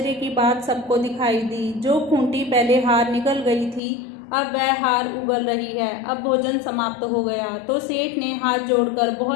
की बात सबको दिखाई दी। जो खूंटी पहले हार निकल गई थी अब वह हार उगल रही है। अब भोजन समाप्त हो गया तो सेठ ने हाथ जोड़कर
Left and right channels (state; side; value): drops out; right; at 3.8 s